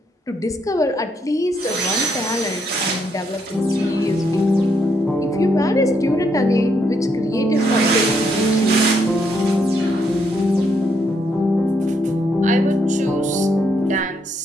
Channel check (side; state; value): both; normal; correlation 0.75